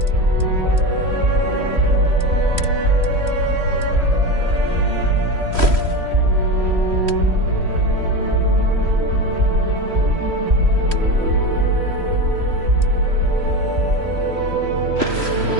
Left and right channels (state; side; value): late; left; 3.1 ms